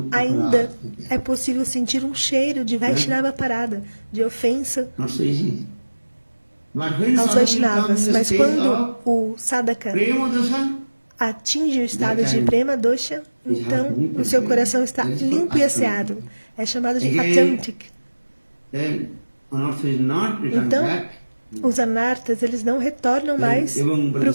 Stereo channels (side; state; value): both; inverted; correlation -1.00